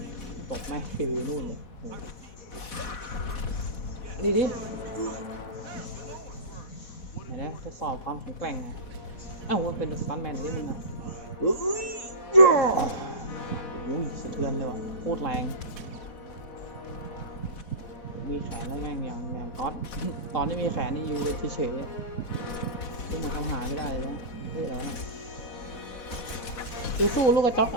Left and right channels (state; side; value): late; right; 4.1 ms